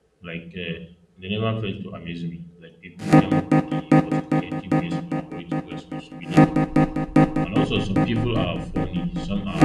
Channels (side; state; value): both; identical; correlation 1.00